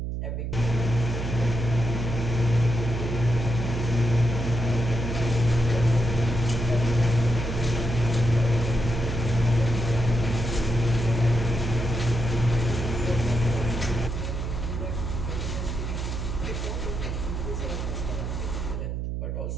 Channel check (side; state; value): right; noise; hum, 3 dB below the sound